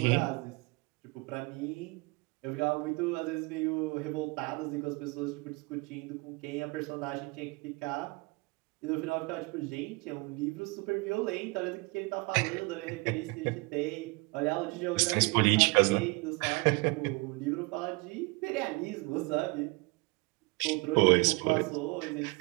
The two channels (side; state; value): left; quieter; 27.5 dB